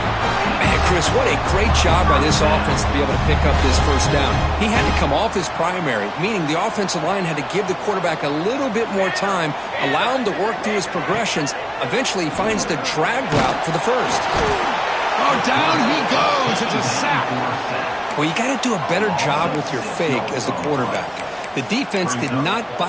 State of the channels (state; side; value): identical; both; correlation 1.00